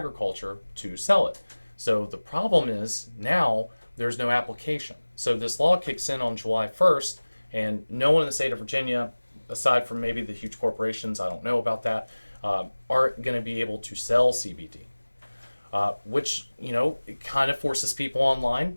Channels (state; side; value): inverted; both; correlation -1.00